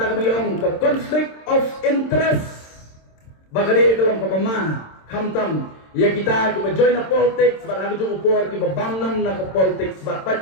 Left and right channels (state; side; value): late; right; 26 ms